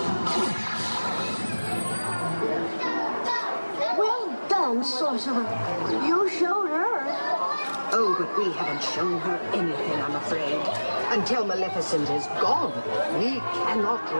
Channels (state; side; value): inverted; both; correlation -1.00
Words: Well done, Sorcerer. You showed her. Oh, but we haven't shown her anything, I'm afraid. Until Maleficent is gone, we cannot